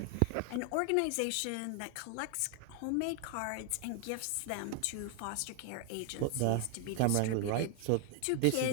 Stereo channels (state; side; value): different; both; correlation 0.00